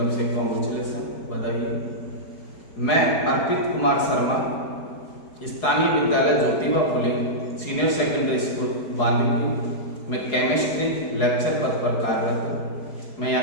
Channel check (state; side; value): late; right; 4.7 ms